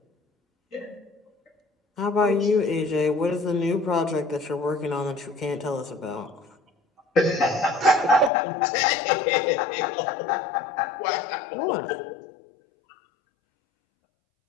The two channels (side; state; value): right; drops out; at 8.3 s